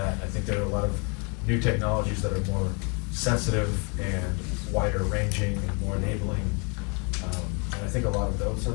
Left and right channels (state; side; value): quieter; right; 34.3 dB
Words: I think there are a lot of new technologies that are more sensitive and wider ranging and more enabling. And I think a lot of those